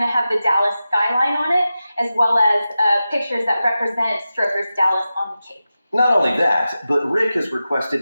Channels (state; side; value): inverted; both; correlation -0.93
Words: have the Dallas skyline on it, as well as pictures that represent Strokers Dallas on the cake. Not only that, but Rick has requested